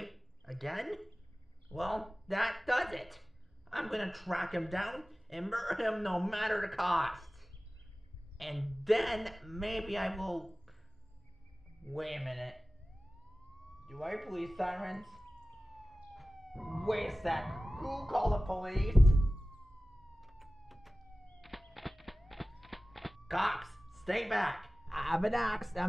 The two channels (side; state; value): both; normal; correlation 0.97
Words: Again? Well, that does it. I'm gonna track him down and murder him no matter the cost. And then maybe I will... Wait a minute. Do I hear police sirens? Wait a sec. Who called the police? Cops, stay back. I have an axe.